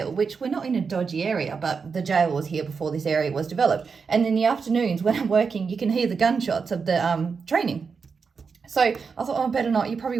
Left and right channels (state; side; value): quieter; left; 5.4 dB